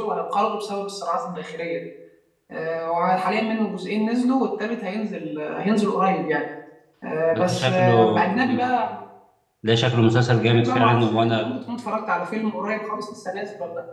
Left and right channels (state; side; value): identical; both; correlation 1.00